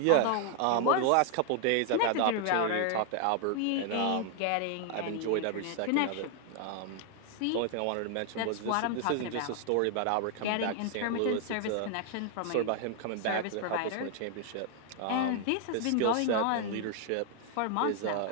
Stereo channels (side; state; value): both; different; correlation 0.00